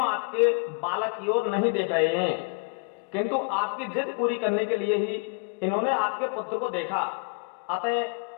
आपके बालक की ओर नहीं देख रहे हैं, किंतु आपकी जिद पूरी करने के लिए ही इन्होंने आपके पुत्र को देखा,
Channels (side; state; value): right; quieter; 34.2 dB